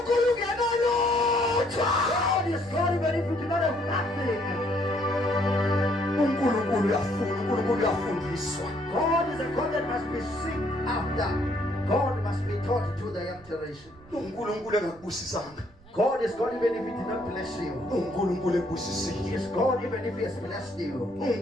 God is God even if you do not have nothing. God is a God that must be sought after. God must be taught to the young generation. God is God even if He did not bless you. He is God even if He has blessed you. Is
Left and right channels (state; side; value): noise; right; rumble, 25 dB below the sound